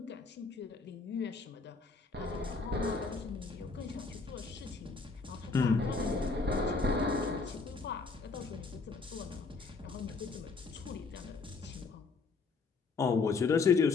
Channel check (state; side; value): quieter; right; 4.4 dB